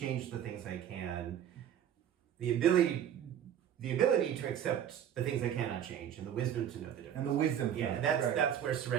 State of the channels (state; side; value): quieter; left; 9.7 dB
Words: the things I can, the ability to accept the things I cannot change, and the wisdom to know the difference. And the wisdom. Yeah, that's where